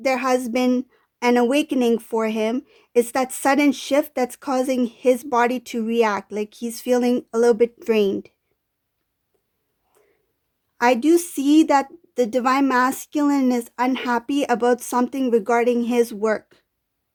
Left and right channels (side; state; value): both; identical; correlation 1.00